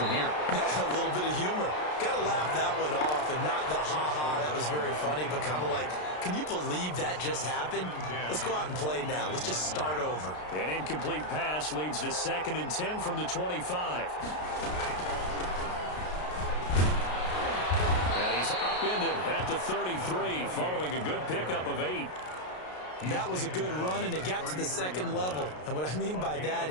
here? A little bit of humor. Got to laugh that one off and not the ha-ha. That was very funny, but kind of like, can you believe that just happened? Let's go out and play now. Let's just start over. An incomplete pass leads to 2nd and 10 from the 25. Upended at the 33 following a good pickup of 8. That was a good run, and it got to the 2nd level. And what I mean by that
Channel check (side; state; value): right; late; 33 ms